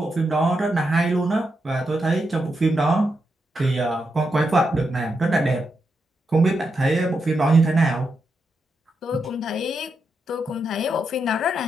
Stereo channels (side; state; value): both; normal; correlation 0.84